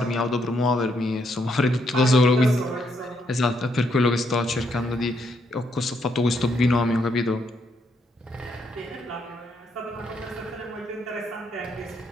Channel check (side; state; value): both; normal; correlation 0.75